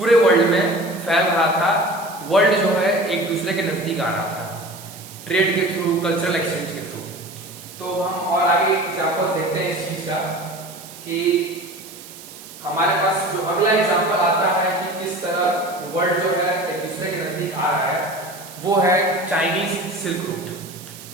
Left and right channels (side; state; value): right; noise; hiss, 16 dB below the sound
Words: वर्ल्ड में फैल रहा था, वर्ल्ड जो है एक दूसरे के नजदीक आ रहा था ट्रेड के थ्रू, कल्चरल एक्सचेंज के थ्रू। तो हम और आगे एग्जांपल्स देखते हैं इस चीज का कि हमारे पास जो अगला एग्जांपल आता है कि किस तरह वर्ल्ड जो है एक दूसरे के नजदीक आ रहा है, वो है Chinese silk route.